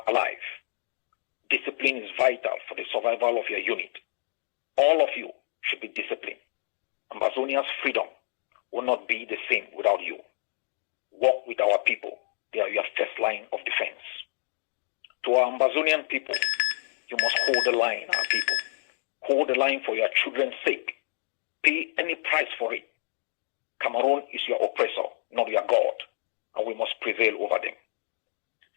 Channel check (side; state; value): right; silent; digital silence